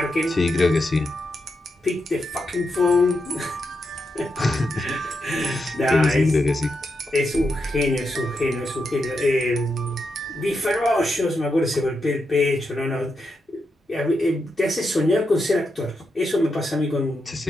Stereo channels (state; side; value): normal; both; correlation 0.85